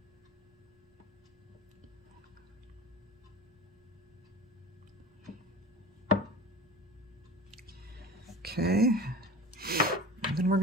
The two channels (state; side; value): normal; both; correlation 0.36